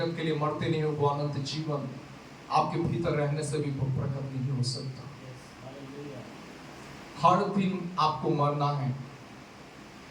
के लिए मरते नहीं हो, वो अनंत जीवन आपके भीतर रहने से भी प्रकट नहीं हो सकता। हर दिन आपको मरना है।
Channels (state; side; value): identical; both; correlation 1.00